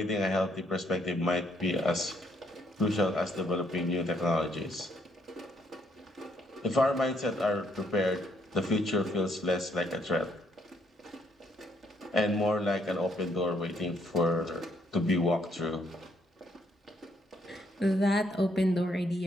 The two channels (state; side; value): normal; both; correlation 0.71